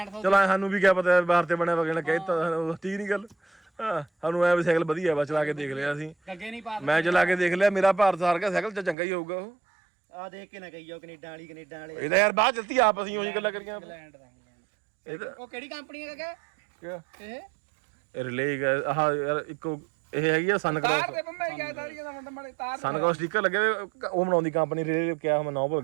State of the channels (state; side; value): drops out; left; at 9.0 s